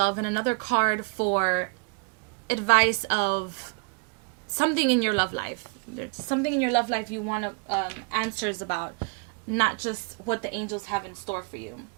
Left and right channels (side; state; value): left; quieter; 35.5 dB